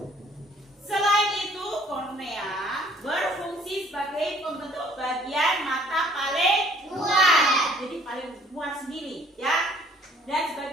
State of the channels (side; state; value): both; normal; correlation 0.58